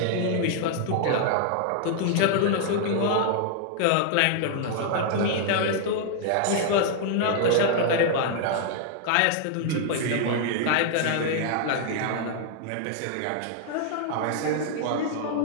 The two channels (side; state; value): both; different; correlation 0.00